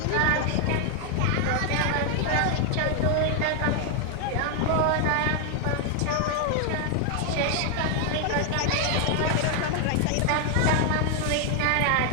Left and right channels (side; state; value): both; different; correlation 0.00